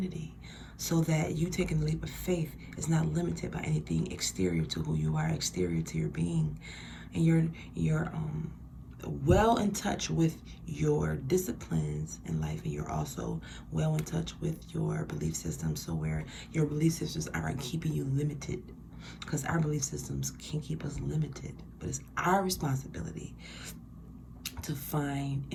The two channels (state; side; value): identical; both; correlation 1.00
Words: so that you taking the leap of faith is not limited by anything exterior to who you are, exterior to your being. And you're well in touch with your disciplines in life, and you're also well in touch with your belief system, so where your belief systems aren't keeping you limited, because our belief systems can keep us limited, but it's our responsibility to find